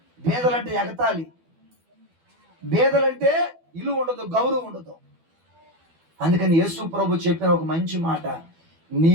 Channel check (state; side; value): late; left; 12 ms